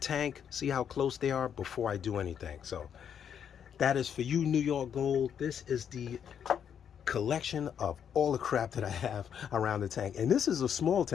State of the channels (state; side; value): quieter; right; 8.3 dB